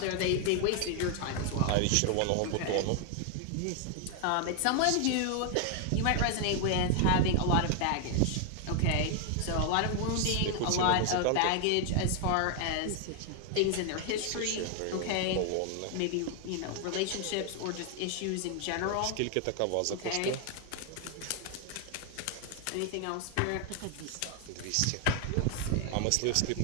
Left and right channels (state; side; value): different; both; correlation 0.00